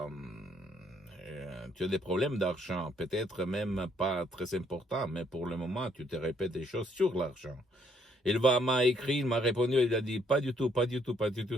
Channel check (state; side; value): normal; both; correlation 0.69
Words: des problèmes d'argent, peut-être même pas très importants, mais pour le moment, tu te répètes des choses sur l'argent. M'a écrit, il m'a répondu, il a dit, pas du tout,